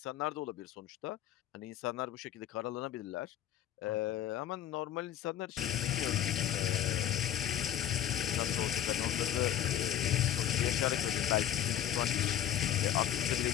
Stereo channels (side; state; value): right; quieter; 11.2 dB